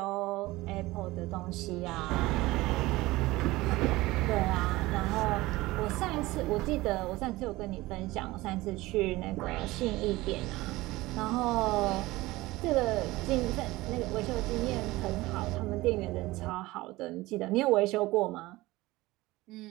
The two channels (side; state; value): left; quieter; 19.4 dB